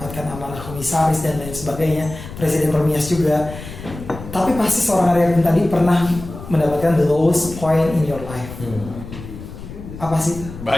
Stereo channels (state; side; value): noise; left; rumble, 12 dB below the sound